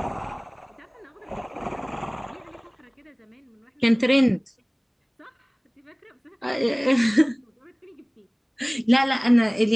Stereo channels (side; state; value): both; identical; correlation 1.00